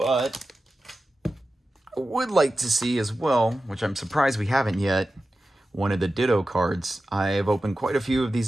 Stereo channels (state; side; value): normal; both; correlation 0.93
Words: I would like to see as well, which I'm surprised we haven't yet, one of the Ditto cards. I've opened quite a few of